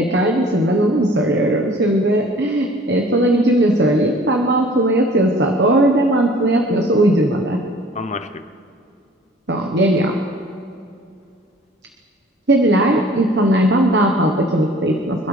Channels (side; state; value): both; normal; correlation 0.51